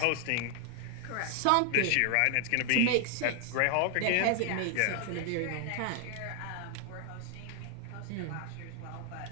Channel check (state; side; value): different; both; correlation 0.00